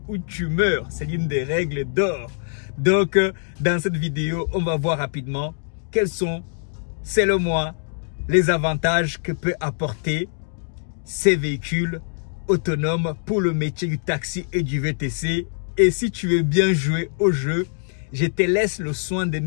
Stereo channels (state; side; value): silent; right; digital silence